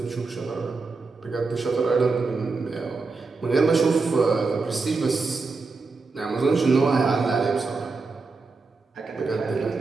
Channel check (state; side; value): quieter; left; 4.1 dB